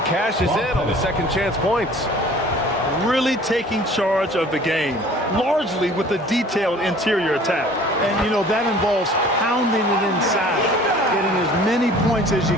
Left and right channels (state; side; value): normal; both; correlation 0.49